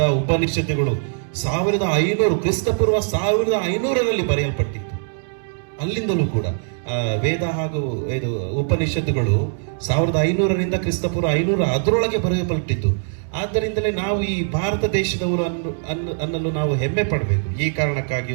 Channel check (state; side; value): silent; left; digital silence